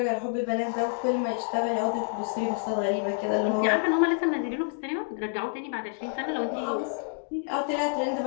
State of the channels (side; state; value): right; silent; 59 dB below the other